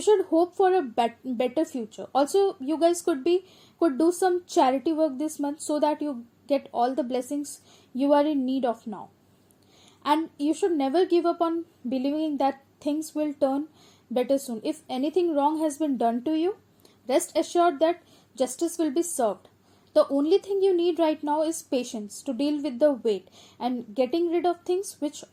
hope for a better future. Also, you guys could do some charity work this month so that you get all the blessings you are in need of now. And you should never give up on believing that things will turn better soon. If anything wrong has been done to you, rest assured that justice will be served. The only thing you need right now is patience to deal with the weight and getting rid of things which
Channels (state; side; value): identical; both; correlation 1.00